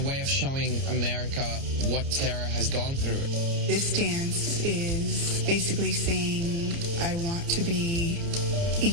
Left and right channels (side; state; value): left; late; 29 ms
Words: of showing America what Tara has gone through. This dance is basically saying I want to be